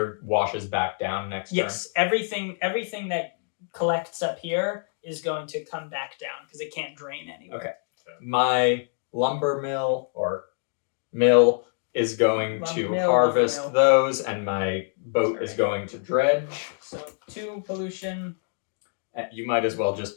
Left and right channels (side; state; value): right; silent; digital silence